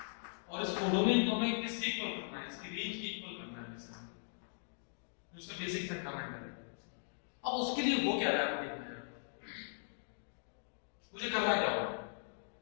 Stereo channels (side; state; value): right; silent; digital silence